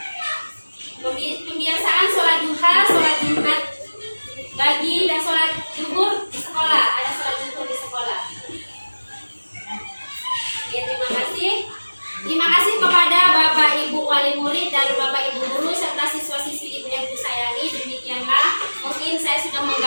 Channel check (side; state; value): both; inverted; correlation -1.00